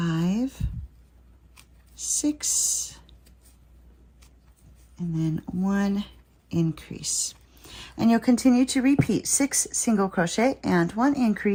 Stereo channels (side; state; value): both; identical; correlation 1.00